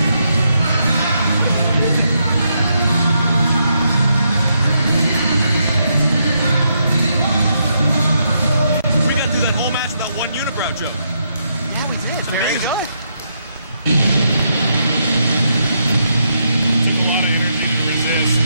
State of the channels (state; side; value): inverted; both; correlation -0.79